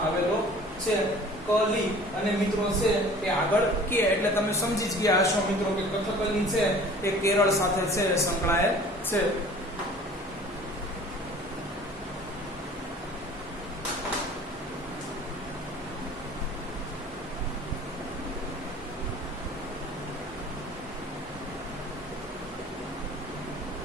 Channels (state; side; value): normal; both; correlation 0.46